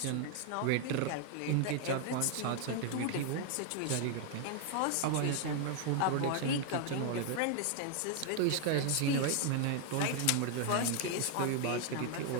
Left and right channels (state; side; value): different; both; correlation 0.00